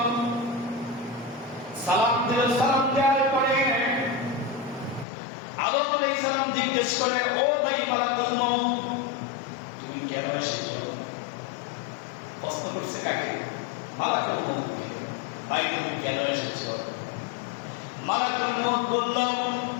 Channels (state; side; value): drops out; right; at 5.1 s